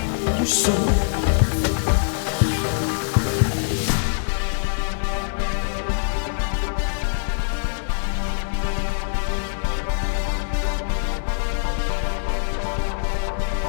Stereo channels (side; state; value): right; silent; digital silence